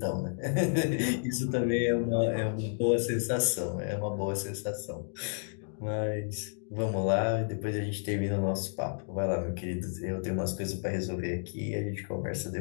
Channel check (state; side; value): silent; right; digital silence